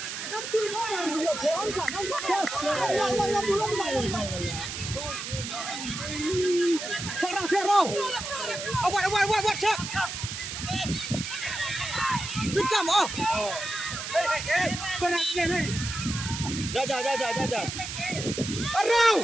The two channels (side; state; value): right; noise; hiss, 6 dB below the sound